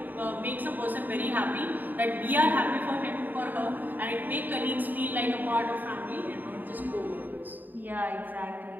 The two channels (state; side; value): late; left; 0.088 ms